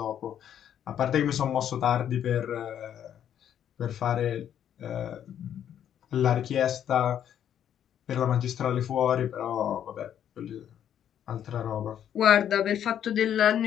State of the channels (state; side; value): quieter; right; 9.8 dB